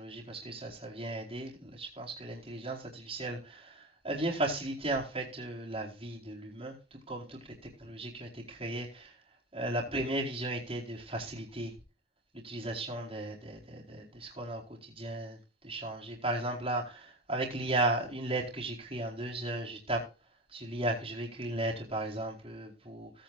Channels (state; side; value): normal; both; correlation 0.25